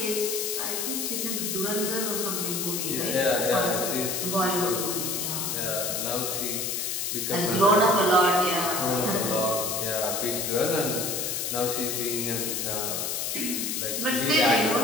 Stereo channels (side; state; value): left; noise; hiss, 1 dB below the sound